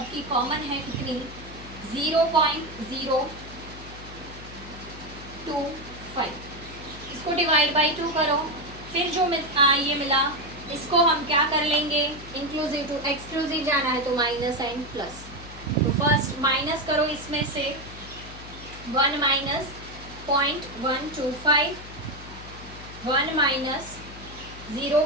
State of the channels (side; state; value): left; noise; hum, 15 dB below the sound